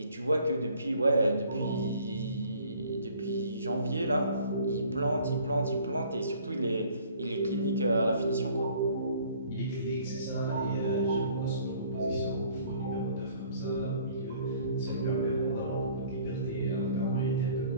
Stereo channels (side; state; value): both; inverted; correlation -0.55